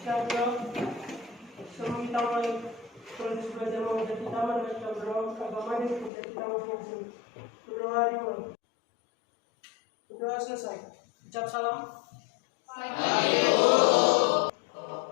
Siap bro. Semua kita mulai proses belajar menjadi taman dan kita berdoa agama ini menjadi taman masing-masing. Berdoa dimulai. Berdoa selesai. Ucap salam.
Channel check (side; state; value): right; drops out; at 6.1 s